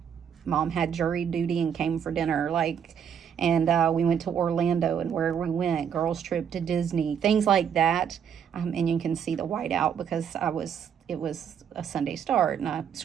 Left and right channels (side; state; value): left; quieter; 8.0 dB